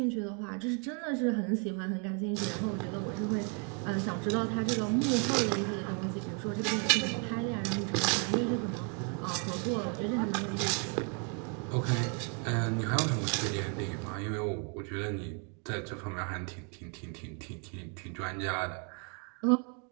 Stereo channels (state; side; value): quieter; left; 37.9 dB